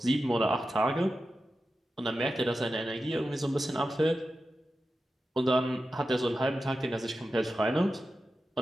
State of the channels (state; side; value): normal; both; correlation 0.92